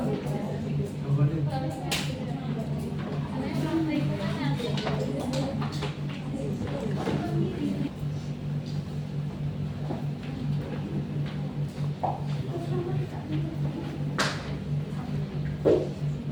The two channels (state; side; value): identical; both; correlation 1.00